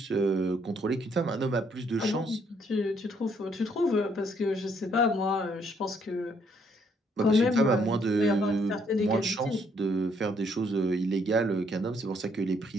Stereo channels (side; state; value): both; normal; correlation 0.69